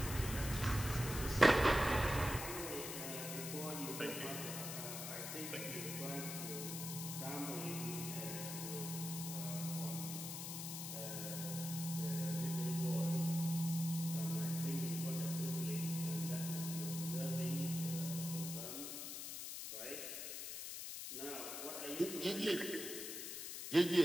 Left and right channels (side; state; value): left; noise; hiss, 6 dB below the sound